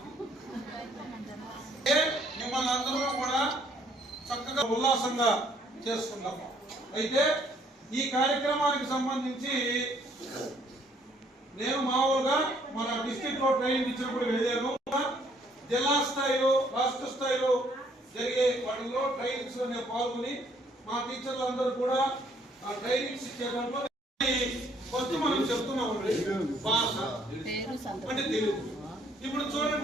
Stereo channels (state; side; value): normal; both; correlation 0.65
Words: మిమ్మల్ని అందరూ కూడా చక్కగా ఉల్లాసంగా చేసుకున్నాం. అయితే ఈ కార్యక్రమానికి సంబంధించి నేను మామూలుగా మన డిస్ట్రిక్ట్ లో ట్రైనింగ్ ఇచ్చినప్పుడు వెళ్ళాను. జిల్లా స్థాయిలో రాష్ట్ర స్థాయిలో జరిగే వాటిలో ట్రైనింగ్స్ లో నేను పాల్గొని మా టీచర్లు అందరూ కూడా ఆ ట్రైనింగ్స్ ఇచ్చేటప్పుడు ఫస్ట్ మనం చెప్తున్నాం భాష అంటే తెలుగు. ఇప్పుడు